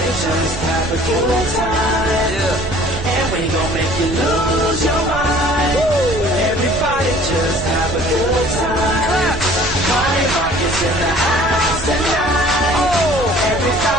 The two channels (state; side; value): noise; right; rumble, 9 dB below the sound